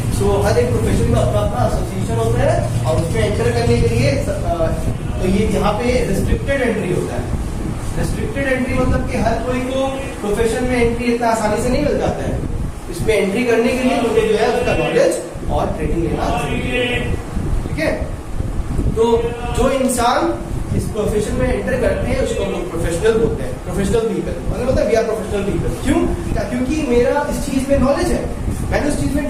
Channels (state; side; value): identical; both; correlation 1.00